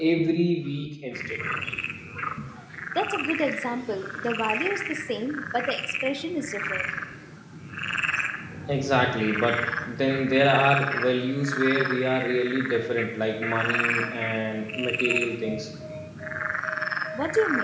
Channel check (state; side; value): identical; both; correlation 1.00